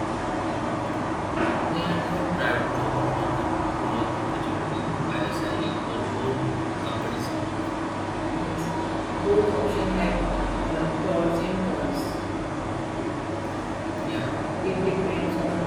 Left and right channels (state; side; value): identical; both; correlation 1.00